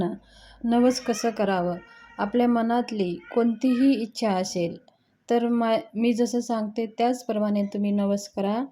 नवस कसं करावं. आपल्या मनातली कोणतीही इच्छा असेल तर मी जसं सांगते त्याचप्रमाणे तुम्ही नवस करा.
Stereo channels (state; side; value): identical; both; correlation 1.00